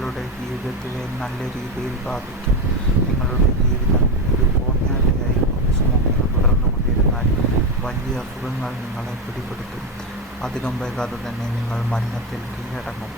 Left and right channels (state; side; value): normal; both; correlation 0.12